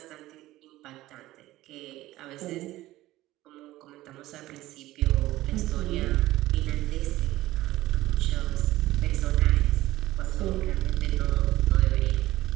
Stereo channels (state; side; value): quieter; left; 16.4 dB